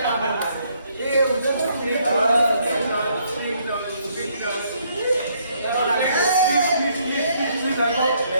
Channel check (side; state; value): both; inverted; correlation -0.69